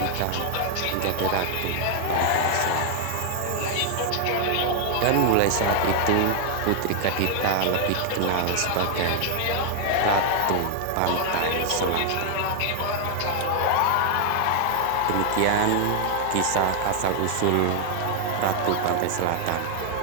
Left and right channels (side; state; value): both; different; correlation 0.00